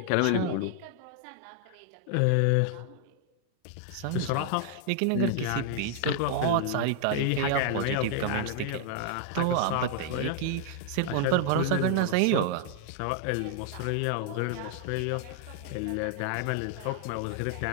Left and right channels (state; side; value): different; both; correlation 0.00